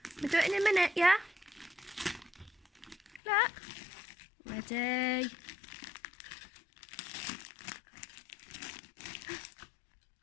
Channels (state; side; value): drops out; right; at 3.2 s